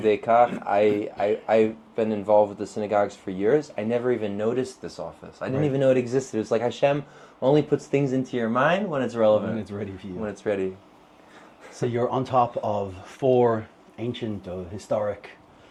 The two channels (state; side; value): identical; both; correlation 1.00